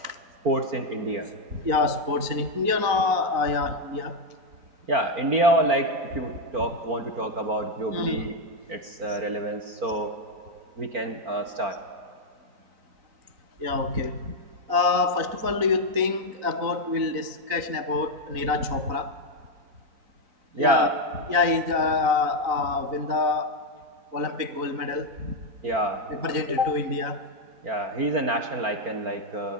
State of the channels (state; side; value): late; left; 4.0 ms